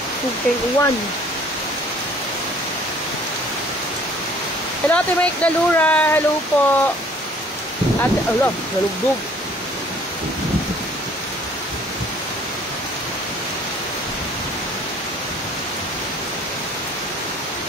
Okay, uwan. Hello, Ate Mike Dalura. Hello po. Ate, ala, nalugdog.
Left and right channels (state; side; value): normal; both; correlation 0.55